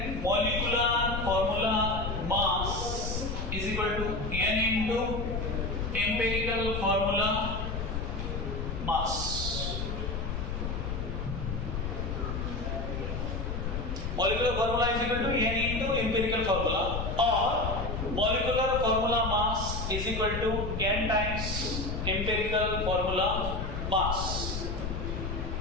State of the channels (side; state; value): left; noise; rumble, 3 dB below the sound